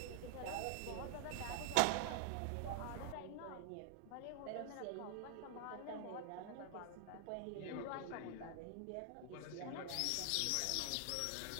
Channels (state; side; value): different; both; correlation 0.00